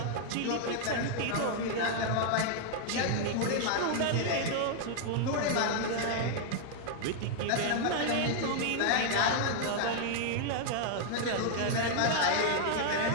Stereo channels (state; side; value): different; both; correlation 0.00